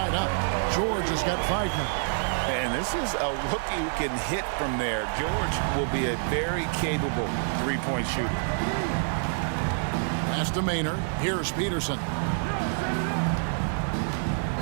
up. George has got 5 now. And this is a rookie who can hit from there. George will be a very capable 3-point shooter. Pass to Maynard. Here's Peterson.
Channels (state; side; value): silent; left; digital silence